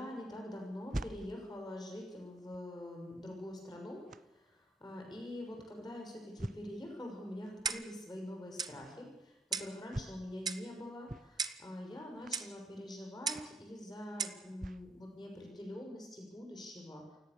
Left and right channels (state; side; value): normal; both; correlation 0.72